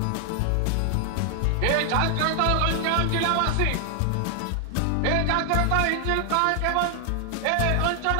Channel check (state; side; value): different; both; correlation 0.00